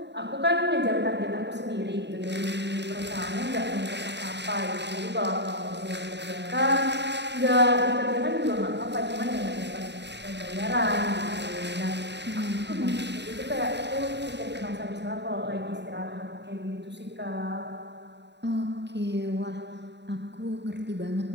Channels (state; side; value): late; left; 0.50 ms